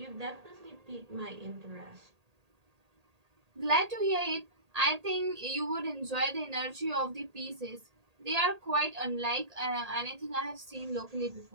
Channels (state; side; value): late; left; 1.8 ms